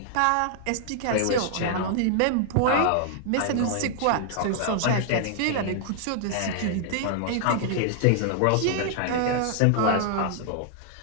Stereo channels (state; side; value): different; both; correlation -0.01